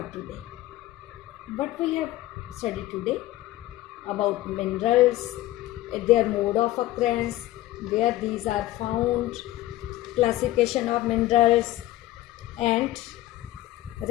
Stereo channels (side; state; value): right; quieter; 15.9 dB